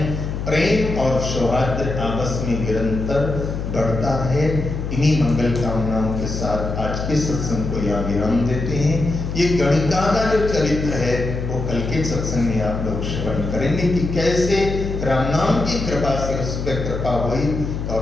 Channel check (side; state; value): left; noise; hum, 4 dB below the sound